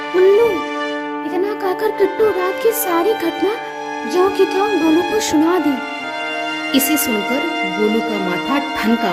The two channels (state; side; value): identical; both; correlation 1.00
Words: उल्लू। इतना कहकर किट्टू रात की सारी घटना ज्यों की त्यों गोलू को सुना दी। इसे सुनकर गोलू का माथा